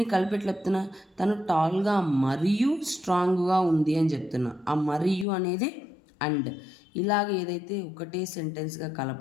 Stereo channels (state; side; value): drops out; right; at 5.2 s